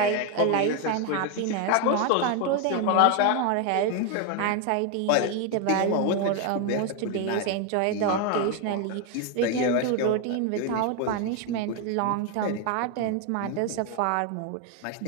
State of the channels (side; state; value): both; different; correlation 0.01